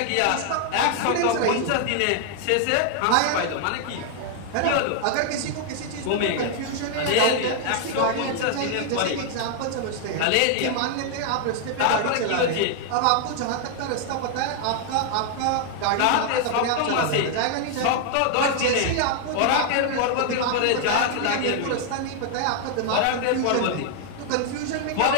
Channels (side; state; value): both; different; correlation 0.00